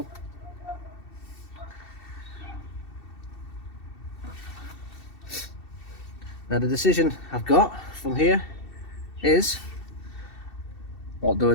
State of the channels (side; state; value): right; late; 2.7 ms